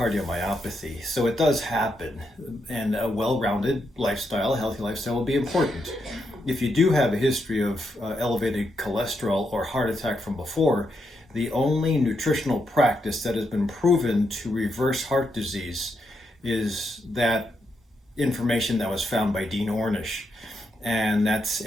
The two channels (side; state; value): both; normal; correlation 0.81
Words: So it does happen, and a well-rounded lifestyle, a healthy lifestyle will be important. If you do have a history of elevated cholesterol or heart attack from before, the only nutritional practice that has been proven to reverse heart disease is that information that was found by Dean Ornish. And that's